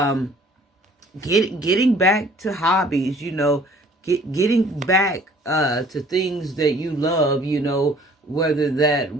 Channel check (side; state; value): both; normal; correlation 0.55